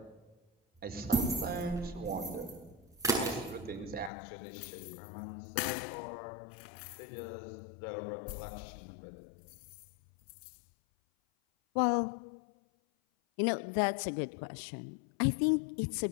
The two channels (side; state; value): right; drops out; at 4.1 s